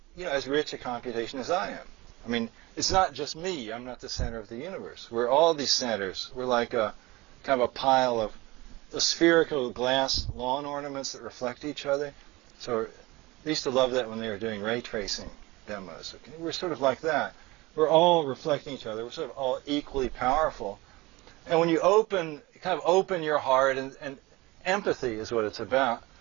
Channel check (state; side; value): quieter; left; 21.5 dB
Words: as rich a computation as I am. I mean, it's not just me. I'm not the center of the universe. We're all these centers. We're like a kind of a pile of the spherical glass lawn ornaments that reflect each other. So I used to love that when they were doing ray tracing demos. Okay? We're sort of like that. We're all reflecting each other. We're sort of all equally powerful. And when you open your heart, and empathy is what it's about,